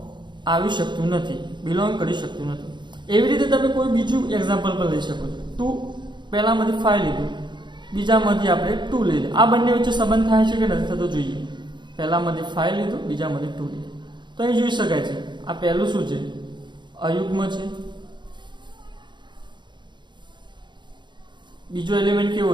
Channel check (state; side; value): late; left; 0.22 ms